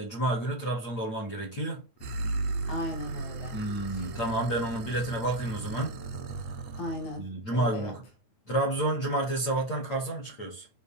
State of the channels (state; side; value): late; right; 8.8 ms